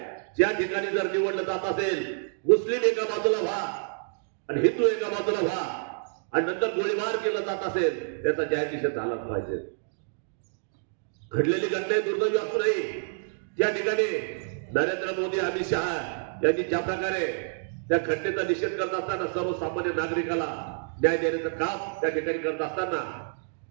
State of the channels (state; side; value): silent; left; digital silence